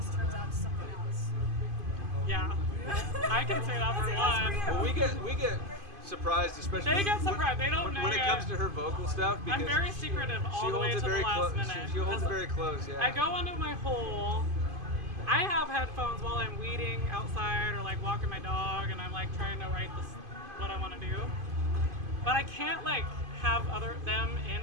turns out to something else? Yeah. I can say that for one. Well, we get surprised, especially They get surprised. They don't know when it yet. comes to her vocal stuff. Because I'm very secretive all the way to the last minute. She holds it very close. Yeah. I go into my hole. I have headphones while I'm weeding outside or like walking my dog, and I'm like trying to write this what I want to do. But I can't like have them in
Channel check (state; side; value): late; left; 2.5 ms